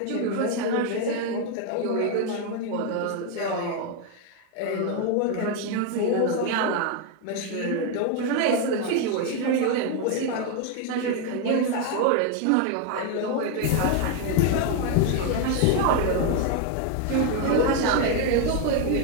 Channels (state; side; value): different; both; correlation 0.01